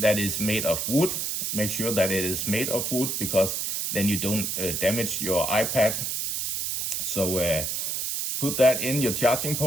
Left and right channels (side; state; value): right; noise; hiss, 1 dB below the sound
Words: that is made of wood. Make sure that it is made of wood because then you don't damage your iPad. So put that in your charging